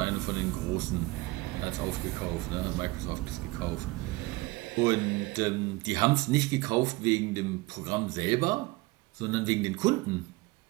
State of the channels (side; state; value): left; quieter; 21.9 dB